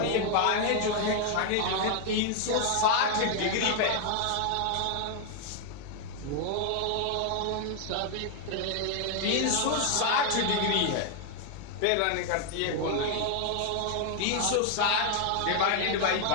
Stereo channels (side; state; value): both; different; correlation 0.00